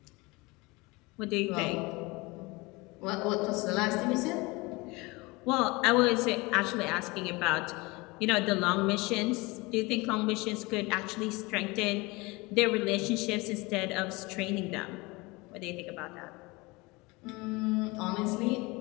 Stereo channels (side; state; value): right; quieter; 24.2 dB